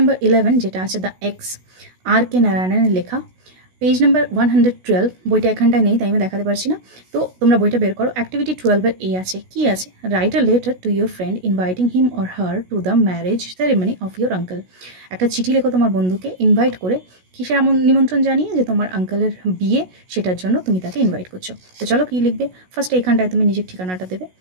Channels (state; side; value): late; left; 16 ms